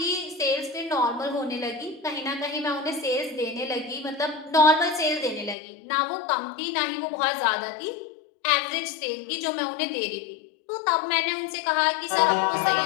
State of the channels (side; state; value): right; drops out; at 5.6 s